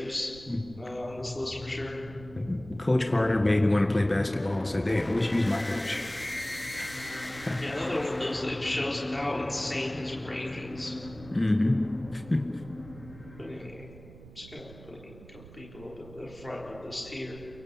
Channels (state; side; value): noise; right; rumble, 18 dB below the sound